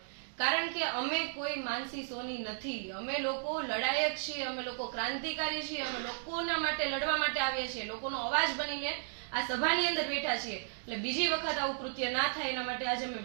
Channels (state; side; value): silent; left; digital silence